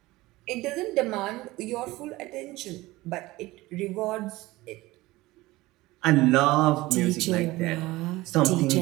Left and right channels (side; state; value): left; quieter; 19.3 dB